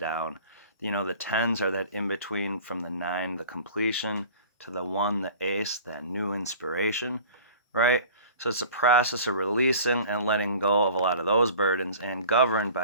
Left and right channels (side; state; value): both; inverted; correlation -0.43